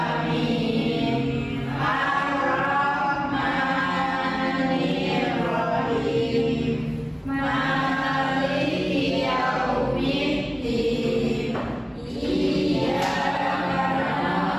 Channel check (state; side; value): identical; both; correlation 1.00